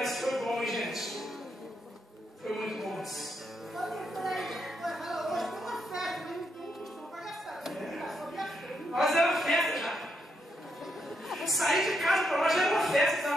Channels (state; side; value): normal; both; correlation 0.79